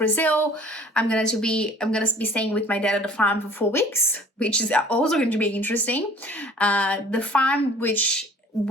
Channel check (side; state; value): both; normal; correlation 0.50